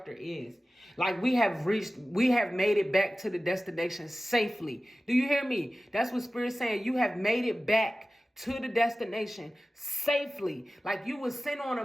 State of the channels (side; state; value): both; normal; correlation 0.96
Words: is. Like we have made it back to the destination safely. Do you hear me? That's what Spirit's saying. You have made it back to the destination safely. Like you was sent on a